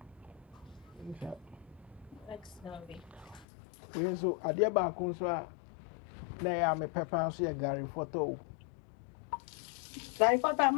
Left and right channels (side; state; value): right; drops out; at 3.5 s